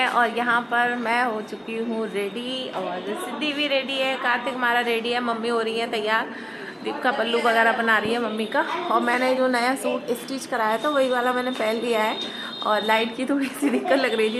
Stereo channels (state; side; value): identical; both; correlation 1.00